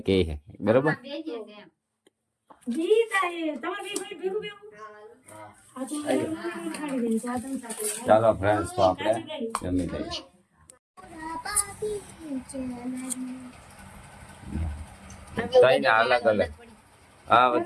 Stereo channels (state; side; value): identical; both; correlation 1.00